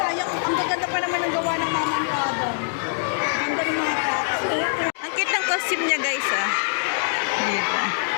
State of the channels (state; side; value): silent; right; digital silence